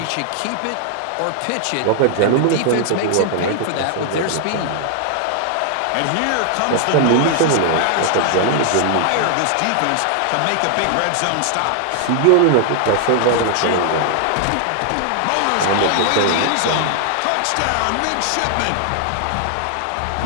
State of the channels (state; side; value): different; both; correlation 0.00